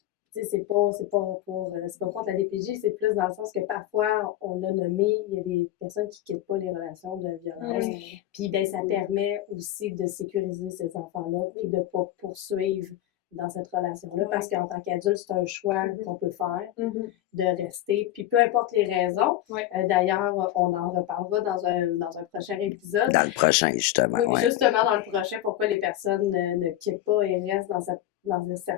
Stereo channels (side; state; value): right; quieter; 13.6 dB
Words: c'est pas contre la DPJ, c'est plus dans le sens que parfois, on l'a nommé, il y a des personnes qui quittent pas les relations de violence. Puis ben ça permet aussi de sécuriser ces enfants-là, puis de pas poursuivre dans cette relation-là, parce qu'en tant qu'adulte, c'est un choix qu'on peut faire de rester, puis peu importe les raisons. D'ailleurs, on en reparlera dans un prochain épisode. Dans le prochain, justement. Oui, justement dans le prochain, pourquoi les personnes ne quittent pas et restent dans